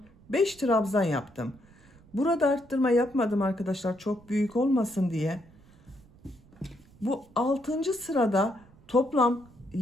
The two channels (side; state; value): right; noise; rumble, 26 dB below the sound